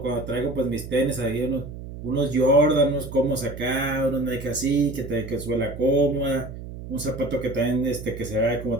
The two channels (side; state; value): right; noise; hum, 11 dB below the sound